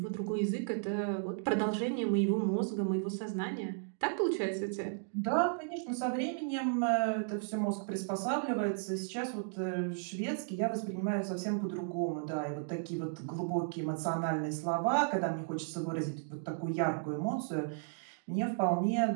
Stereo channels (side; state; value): left; silent; digital silence